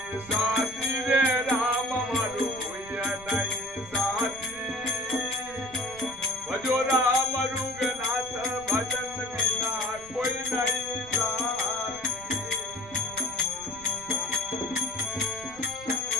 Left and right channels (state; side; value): noise; right; rumble, 19 dB below the sound